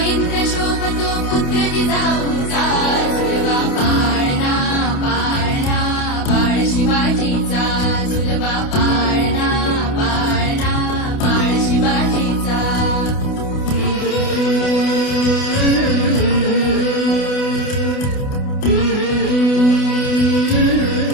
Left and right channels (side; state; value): right; late; 28 ms